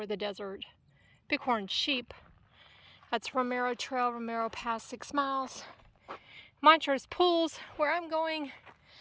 the desert. Bighorn sheep. That's Romero Trail, Romero Pass, 6 miles. Montrose pools, where I'm going,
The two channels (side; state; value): both; identical; correlation 1.00